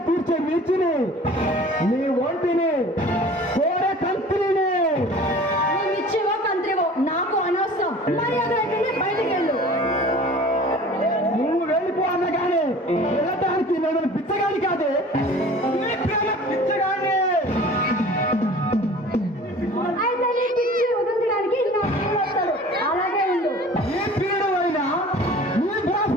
కూర్చే మిర్చిని, నీ ఒంటిని కోరే కంత్రిని. నువ్వు ఇచ్చేవో కంత్రివో నాకు అనవసరం. మర్యాద ఇక్కడ బయటికి వెళ్ళు. నువ్వు వెళ్ళిపో అన్నగానే వెళ్ళటానికి నేను పిచ్చగాని కాదే, నీ ప్రేమ పిచ్చగాని. అయితే నీ పిచ్చి వదిలించడానికి నా ప్రియుడు వస్తాడు. అలాగే ఉండు. నీ ప్రియుడు అయినా, నీ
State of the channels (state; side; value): normal; both; correlation 0.44